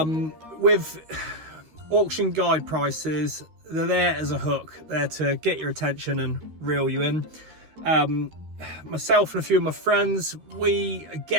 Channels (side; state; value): left; late; 13 ms